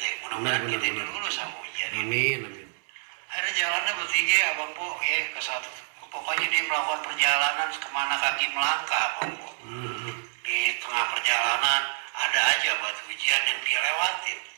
Mudah-mudahan Benar, kita benar. lulus sama ujian ini. amin, amin. Akhirnya jalannya bertiga abang po ya ke satu. Pokoknya dia melakukan perjalanan kemana kaki melangkah abang po. Di tengah perjalanan ada aja batu ujian yang dia lewatin.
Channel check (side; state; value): left; silent; 60 dB below the other